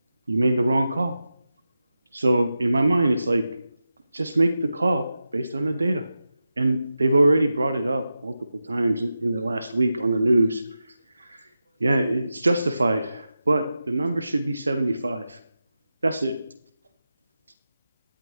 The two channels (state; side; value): inverted; both; correlation -0.91